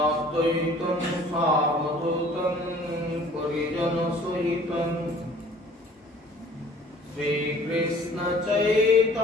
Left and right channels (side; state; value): both; normal; correlation 0.52